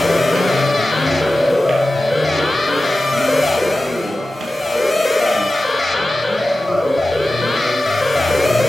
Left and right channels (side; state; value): both; normal; correlation 0.94